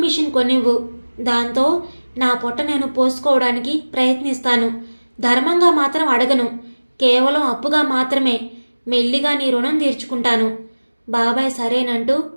మిషన్ కొనివ్వు. దాంతో నా పొట్ట నేను పోసుకోవడానికి ప్రయత్నిస్తాను. ధర్మంగా మాత్రం అడగను, కేవలం అప్పుగా మాత్రమే. మెల్లిగా నీ రుణం తీర్చుకుంటాను. బాబాయ్ సరేనంటూ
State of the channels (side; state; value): both; inverted; correlation -1.00